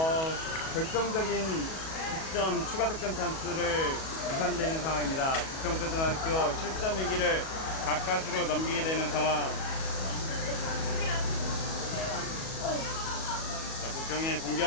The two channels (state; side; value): late; right; 37 ms